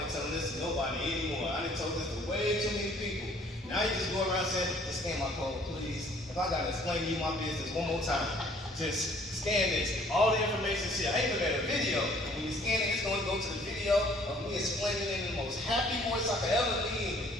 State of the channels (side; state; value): both; normal; correlation 0.58